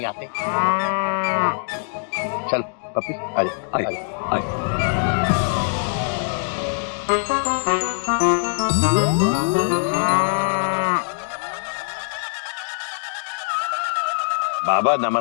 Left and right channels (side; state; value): right; silent; digital silence